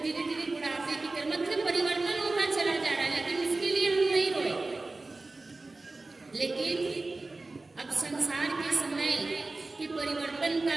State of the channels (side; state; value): left; quieter; 3.3 dB